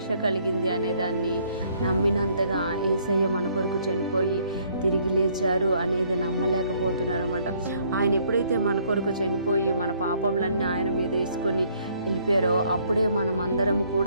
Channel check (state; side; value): inverted; both; correlation -0.64